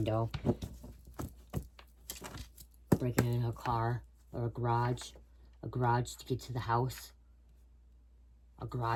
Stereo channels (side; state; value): both; identical; correlation 1.00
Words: Breaking into a car or a garage. A garage to get to the house. A